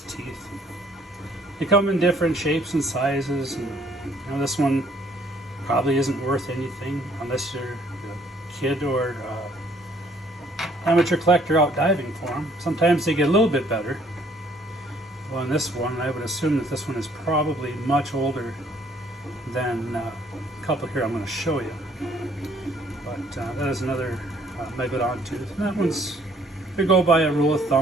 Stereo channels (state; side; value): normal; both; correlation 0.62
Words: teeth. They come in different shapes and sizes, and you know, this one probably isn't worth anything unless you're a kid or amateur collector out diving for them. Sometimes they get a little bit better. Well, in this one, I would assume that this one is probably much older than a couple here I'm going to show you. But that is another Megalodon tooth. And that one's, they go by a rule of